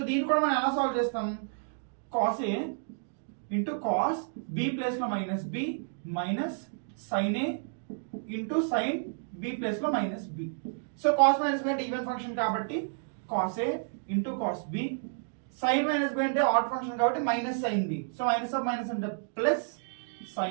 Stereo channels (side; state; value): left; silent; digital silence